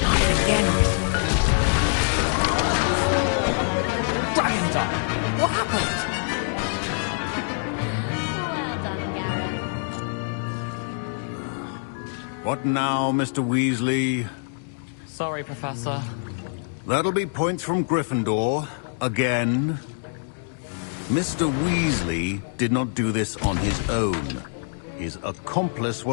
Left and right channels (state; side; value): silent; right; digital silence